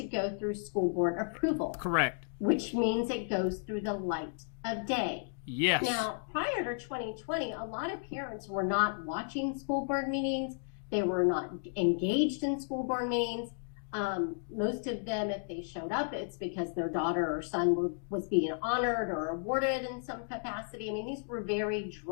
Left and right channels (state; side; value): silent; right; digital silence